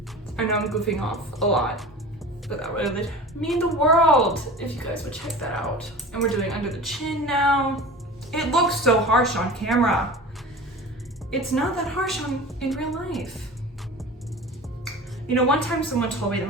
I know I'm goofing off a lot, but that would mean the world if you guys would check that out. And we're doing under the chin now. It looks so harsh on camera. it's not that harsh in real life. You know, one time someone told me that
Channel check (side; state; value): both; normal; correlation 0.36